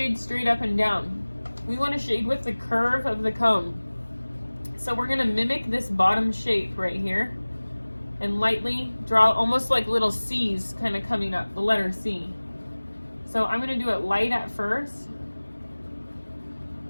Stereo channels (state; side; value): inverted; both; correlation -1.00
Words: straight up and down. We want to shade with the curve of the cone. So we're going to mimic this bottom shape right here and lightly draw almost like little C's kind of coming up, the letter C. So I'm going to do it light at first.